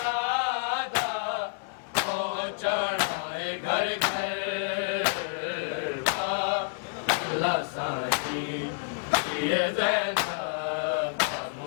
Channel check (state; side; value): silent; right; digital silence